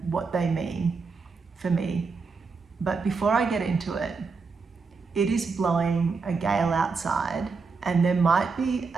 what they mean for me. But before I get into it, it is blowing a gale outside, and there might be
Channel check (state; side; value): quieter; left; 4.7 dB